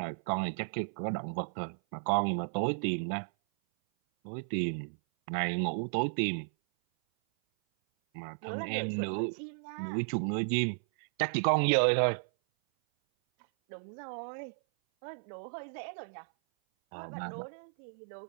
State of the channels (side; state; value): left; silent; 55 dB below the other